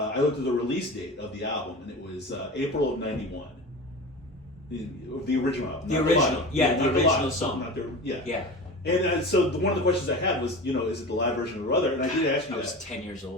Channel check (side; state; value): both; normal; correlation 0.32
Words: looked at the release date of the album, and it was April of 91. The original album. The original, the original song. Not the, yeah. Yeah. And so one of the questions I had was, is it the live version or other? And I did ask you that. I was 10 years